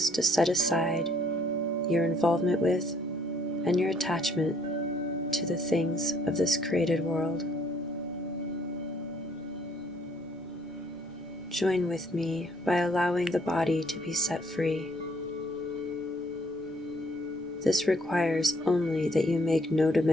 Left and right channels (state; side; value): normal; both; correlation 0.64